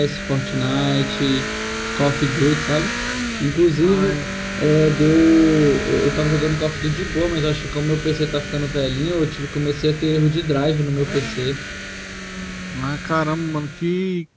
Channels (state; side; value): identical; both; correlation 1.00